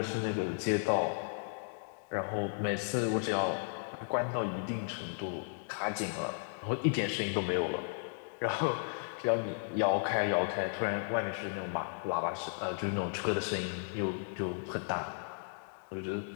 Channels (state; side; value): silent; right; digital silence